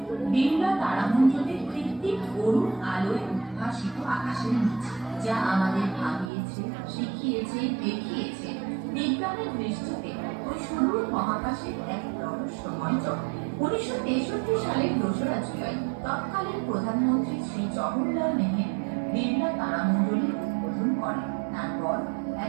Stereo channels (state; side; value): drops out; left; at 6.3 s